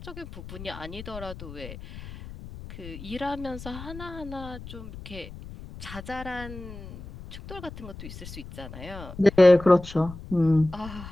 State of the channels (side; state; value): left; noise; rumble, 13 dB below the sound